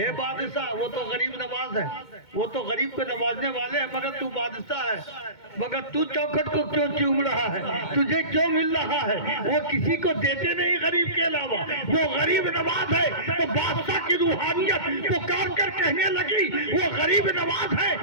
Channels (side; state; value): right; late; 2.2 ms